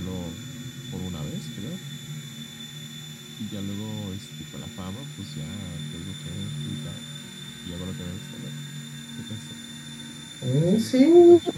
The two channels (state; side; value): identical; both; correlation 1.00